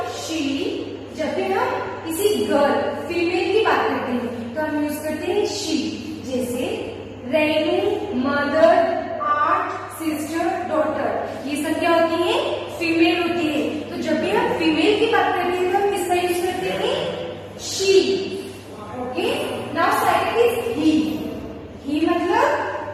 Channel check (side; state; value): both; identical; correlation 1.00